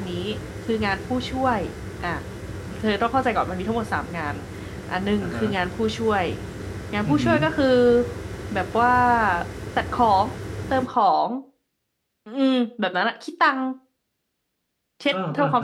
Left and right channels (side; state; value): both; identical; correlation 1.00